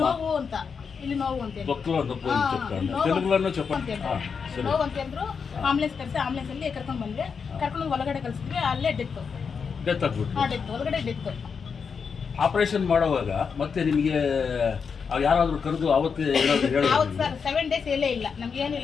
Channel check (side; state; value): right; quieter; 5.9 dB